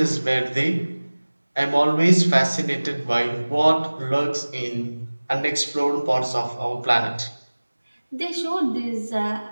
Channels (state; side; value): inverted; both; correlation -1.00